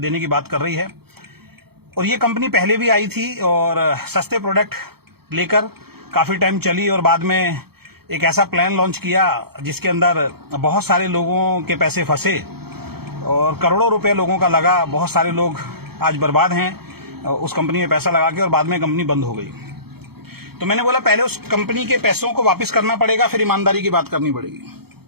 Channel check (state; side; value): late; left; 0.96 ms